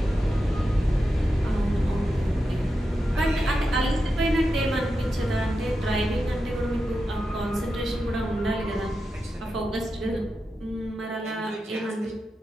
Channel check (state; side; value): normal; both; correlation 0.89